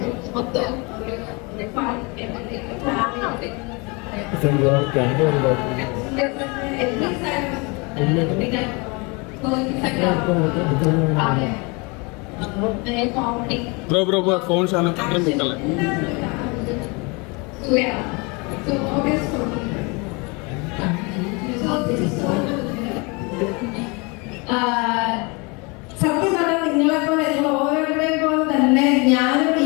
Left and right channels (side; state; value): right; quieter; 29.1 dB